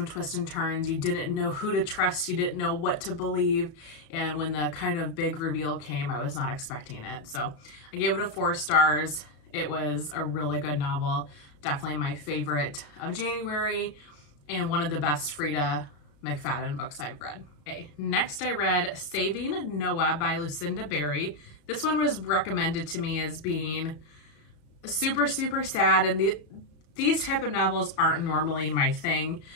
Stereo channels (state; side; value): late; right; 34 ms